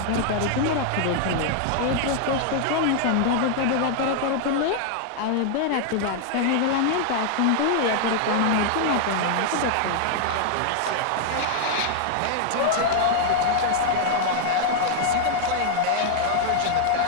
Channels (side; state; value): both; different; correlation 0.00